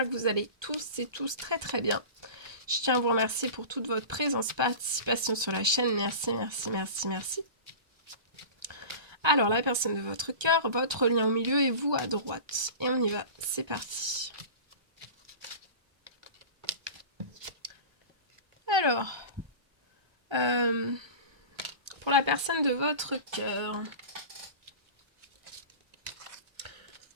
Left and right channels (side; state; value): left; late; 1.2 ms